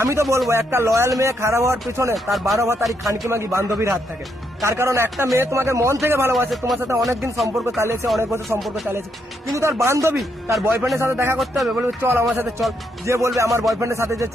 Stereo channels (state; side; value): normal; both; correlation 0.77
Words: আমি তো বলবো একটা লয়াল মেয়ে খারাপ হওয়ার পেছনে তার 12 ভাতারি খানকি মাগি বান্ধবীর হাত থাকে। তার কারণ একটা মেয়ে তোমাকে মন থেকে ভালোবাসে, তোমার সাথে অনেকদিন সম্পর্ক চালিয়েছে, অনেক বছর সম্পর্ক চালিয়েছে, কিন্তু তার বান্ধবী তার বয়ফ্রেন্ডের সাথে দেখা করতে হবে, বলবে চল আমার সাথে চল। যে বলবে আমার বয়ফ্রেন্ডের সাথে যে